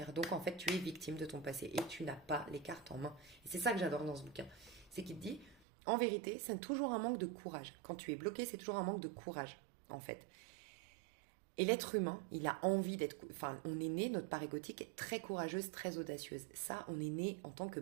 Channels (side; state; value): left; drops out; at 5.6 s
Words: Donc, en fait, tu es victime de ton passé et tu n'as pas les cartes en main. Et c'est ça que j'adore dans ce bouquin. C'est qu'il te dit, En vérité, c'est toujours un manque de courage. Quand tu es bloqué, c'est toujours un manque de courage, en fait. Et l'être humain, il a envie d'être... Enfin, on est né, notre part égotique est très courageuse, très audacieuse. Ça, on est né en tant que